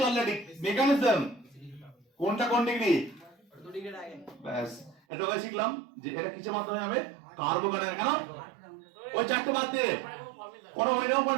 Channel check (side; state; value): left; drops out; at 5.0 s